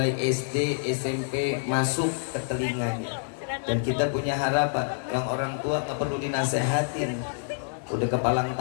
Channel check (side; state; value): right; silent; digital silence